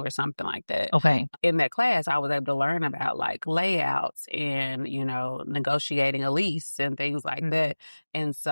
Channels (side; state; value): both; inverted; correlation -1.00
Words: something like that. Okay. In that class, I was able to learn about like layouts and, you know, negotiating a lease and things like that. And